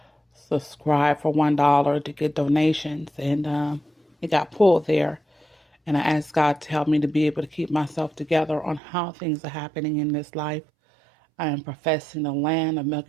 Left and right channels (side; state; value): left; drops out; at 8.8 s